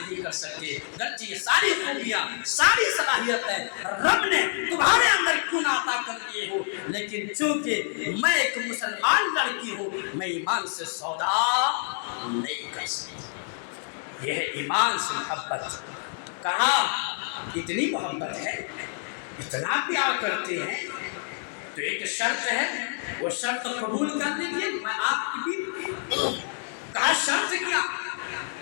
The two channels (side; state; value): right; silent; 60 dB below the other